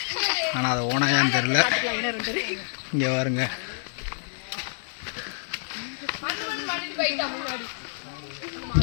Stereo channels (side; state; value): right; silent; 60 dB below the other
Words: ஆனால் அது ஓனாயான்னு தெரில. இங்கே பாருங்க.